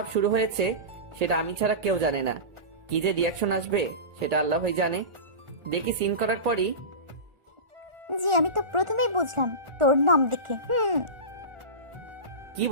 শুরু হয়েছে সেটা আমি ছাড়া কেউ জানে না। কি যে রিয়াকশন আসবে সেটা আল্লাহই জানে। দেখি সিন করার পরই, জি, আমি তো প্রথমেই বুঝলাম তোর নাম দেখে। কি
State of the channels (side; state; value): left; late; 1.4 ms